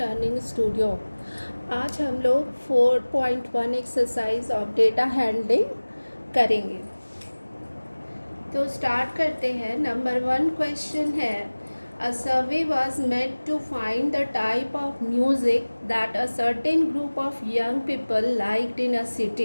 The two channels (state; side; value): inverted; both; correlation -1.00